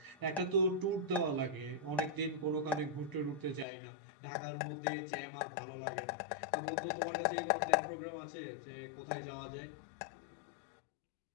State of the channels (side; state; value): right; drops out; at 3.7 s